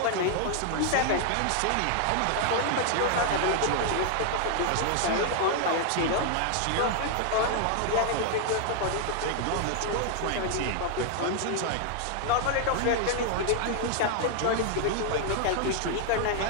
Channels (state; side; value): different; both; correlation 0.00